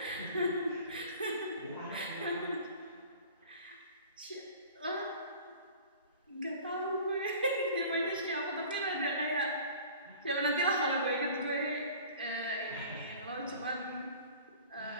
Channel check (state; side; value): inverted; both; correlation -0.44